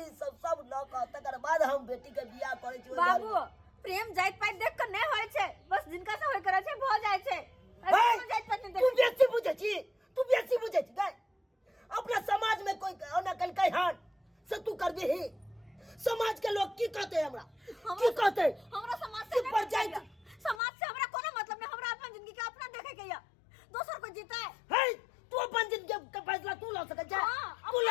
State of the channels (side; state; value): right; drops out; at 20.6 s